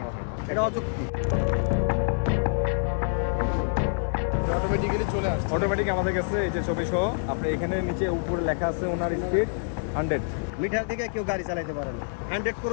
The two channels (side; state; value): right; silent; digital silence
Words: হয় না। এটা অযুক্তি। অটোমেটিক্যালি চলে আসছে। অটোমেটিক আমাদের কাছে এই যে ছবি সহ আপনি এখানে নিচে উপরে লেখা আছে ওনার স্পিড 100। মিটার দিকে কেউ গাড়ি চালাইতে পারে না। 100